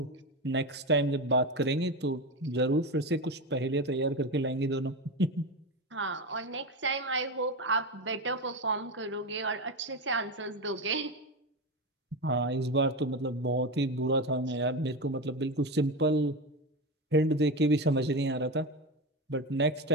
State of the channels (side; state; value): both; normal; correlation 0.19